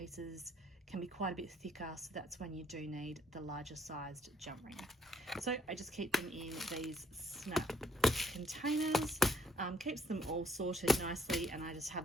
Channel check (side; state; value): both; normal; correlation 0.67